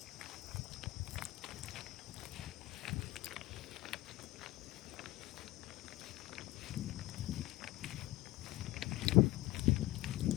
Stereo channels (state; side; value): quieter; right; 17.9 dB